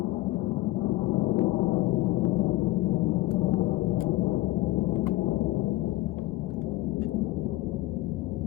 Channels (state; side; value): quieter; right; 17.8 dB